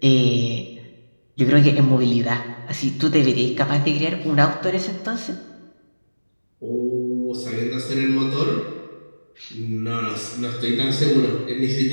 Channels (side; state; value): both; inverted; correlation -1.00